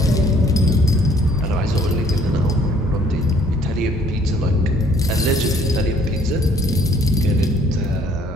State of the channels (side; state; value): both; normal; correlation 0.60